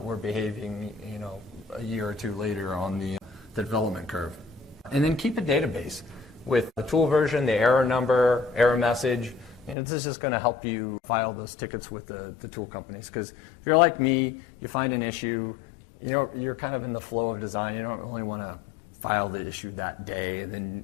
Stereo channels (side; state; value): right; drops out; at 9.8 s